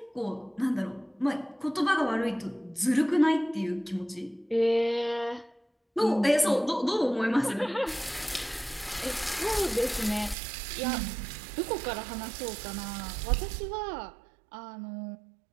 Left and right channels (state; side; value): drops out; left; at 10.4 s